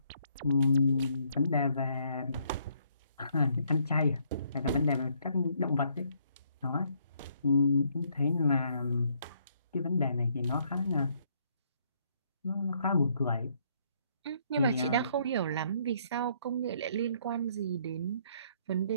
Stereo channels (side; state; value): both; inverted; correlation -0.69